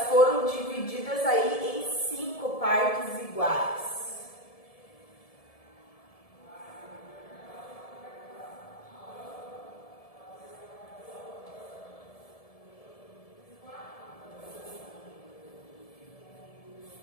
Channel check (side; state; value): right; late; 1.7 ms